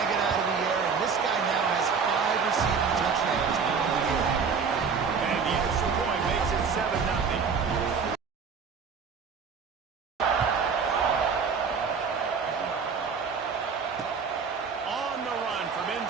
it out of the air, and this guy now has 5 receiving touchdowns on the year. And the extra point makes it 7-0. On the run from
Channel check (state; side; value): quieter; left; 5.7 dB